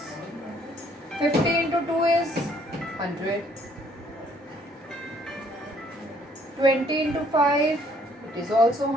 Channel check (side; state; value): both; normal; correlation 0.63